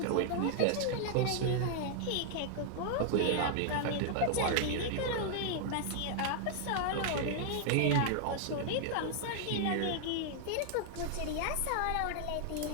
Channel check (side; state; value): both; different; correlation 0.00